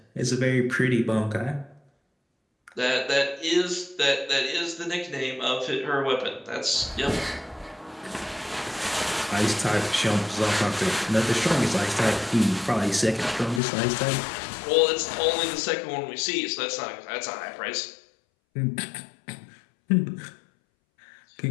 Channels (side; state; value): right; drops out; at 13.6 s